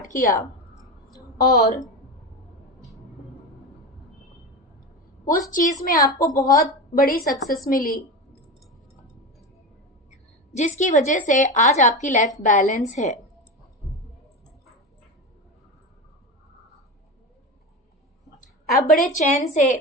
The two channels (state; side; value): normal; both; correlation 0.22